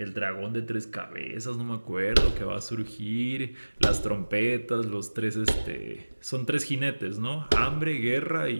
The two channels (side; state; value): both; inverted; correlation -1.00